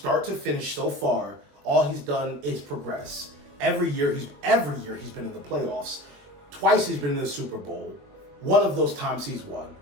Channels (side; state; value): left; late; 21 ms